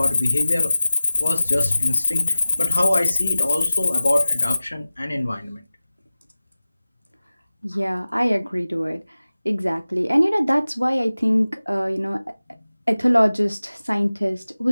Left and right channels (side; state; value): both; inverted; correlation -0.97